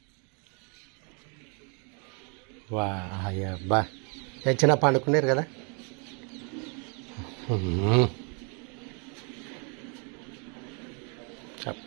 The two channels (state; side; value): quieter; left; 36.5 dB